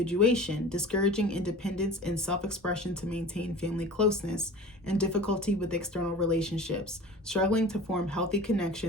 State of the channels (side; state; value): both; normal; correlation 0.39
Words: discouraging independence and self-expression to maintain family closeness, and difficulty with external relationships, struggling to form healthy